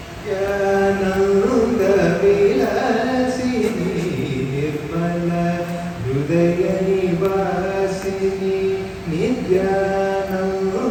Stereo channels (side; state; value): both; identical; correlation 1.00